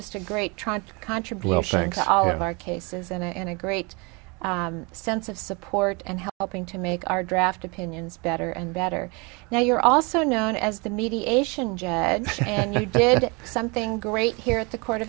a great contribution to all of our cases, and a great sense of support and helping to make our draft opinions better and better. Now, you're also known as the mediation judge, and you did something great here at the Court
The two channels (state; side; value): quieter; left; 29.3 dB